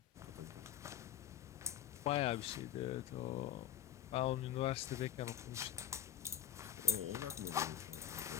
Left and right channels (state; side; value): quieter; right; 10.2 dB